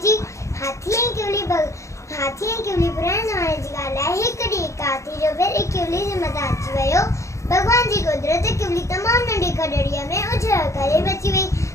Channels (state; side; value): late; right; 0.15 ms